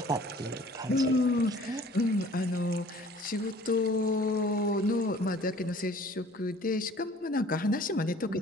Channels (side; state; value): both; normal; correlation 0.51